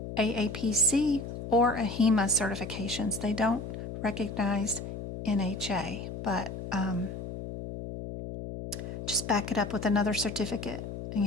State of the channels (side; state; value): left; noise; hum, 8 dB below the sound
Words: aapc or ahima certifications. They don't recognize NHA, but just back it up with another certificate and